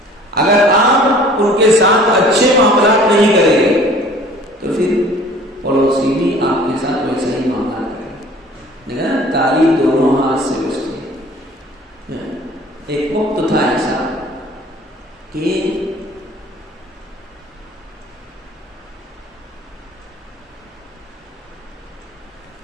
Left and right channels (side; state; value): both; normal; correlation 0.49